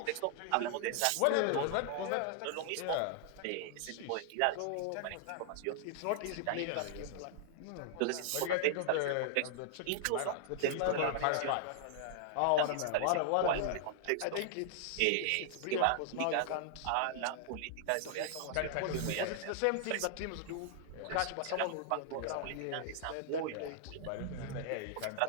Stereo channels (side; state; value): both; different; correlation 0.00